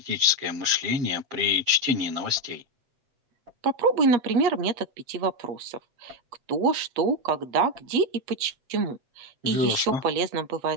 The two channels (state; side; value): late; left; 7.5 ms